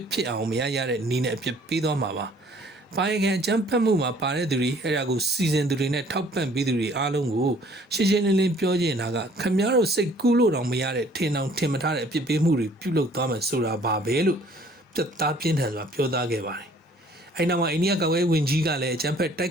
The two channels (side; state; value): both; normal; correlation 0.57